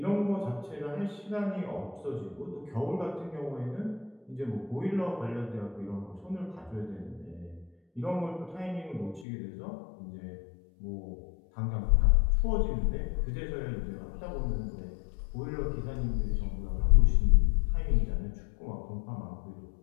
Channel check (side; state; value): right; drops out; at 9.2 s